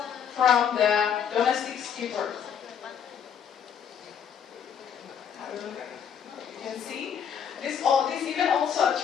from the domestic skippers. You can see this event also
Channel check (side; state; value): right; quieter; 8.0 dB